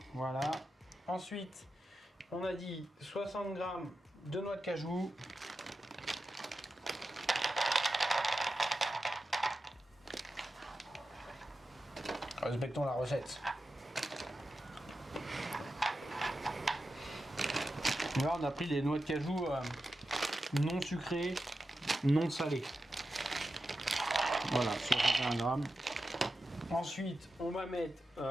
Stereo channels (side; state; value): both; normal; correlation 0.91